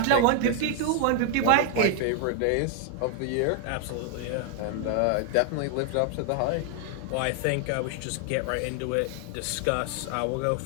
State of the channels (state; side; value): different; both; correlation 0.00